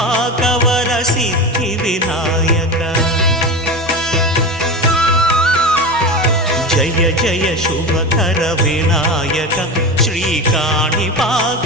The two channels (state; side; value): normal; both; correlation 0.24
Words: సిద్ధి వినాయక. జయ జయ శుభకర వినాయక శ్రీకాణిపాకవర